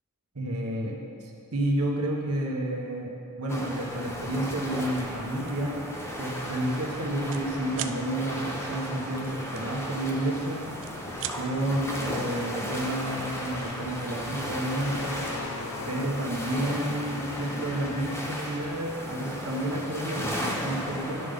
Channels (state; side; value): normal; both; correlation 0.47